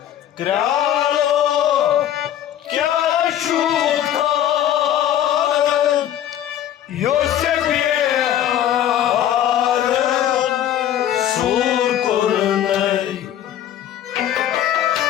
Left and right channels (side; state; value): right; quieter; 11.2 dB